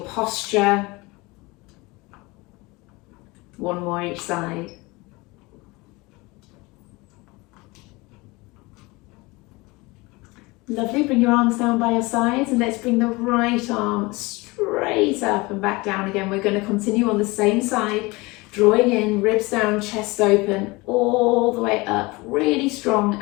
posture. One more each side. Lovely, bring your arms down by your sides and let's bring the right arm straight up and back down again. We're going to continue on the same side, drawing in, ribs down, chest open, all the way up, really strong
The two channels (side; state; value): right; quieter; 23.8 dB